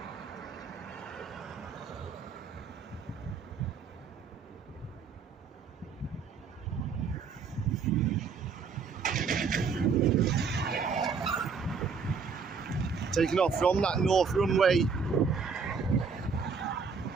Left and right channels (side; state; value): left; quieter; 5.5 dB